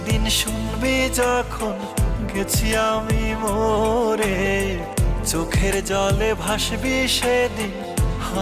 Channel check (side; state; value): both; identical; correlation 1.00